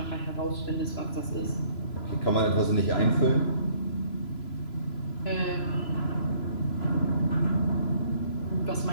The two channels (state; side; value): late; right; 3.0 ms